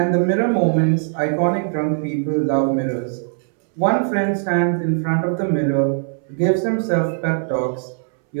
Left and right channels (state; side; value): silent; left; 66 dB below the other